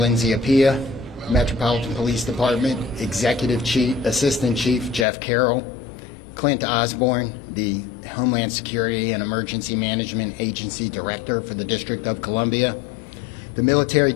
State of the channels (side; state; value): right; drops out; at 5.1 s